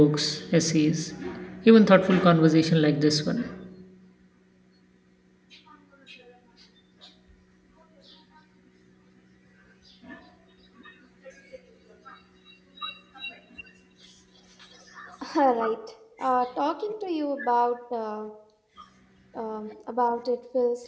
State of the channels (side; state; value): both; identical; correlation 1.00